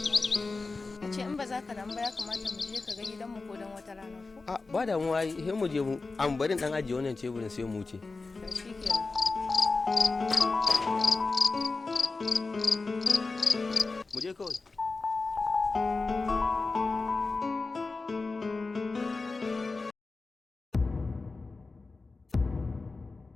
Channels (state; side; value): quieter; right; 3.8 dB